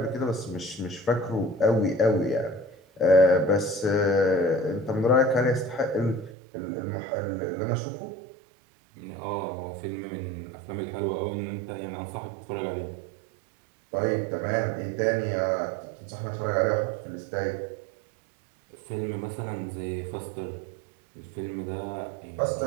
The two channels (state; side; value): drops out; left; at 6.3 s